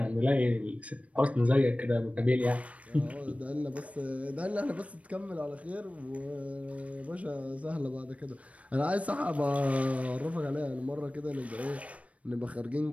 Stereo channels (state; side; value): late; left; 0.065 ms